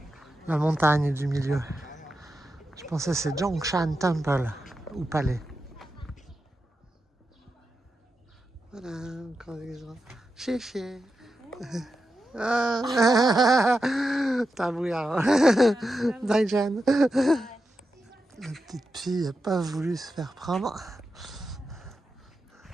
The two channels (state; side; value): normal; both; correlation 0.89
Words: la montagne du milieu. Je pensais que c'est Zhongshan Temple ou palais. Voilà, encore des gens. Chéché. Tabouya. Daijan. La petite fille n'a pas voulu se faire prendre.